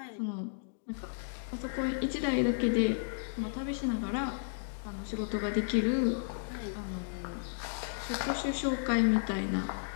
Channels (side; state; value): right; silent; digital silence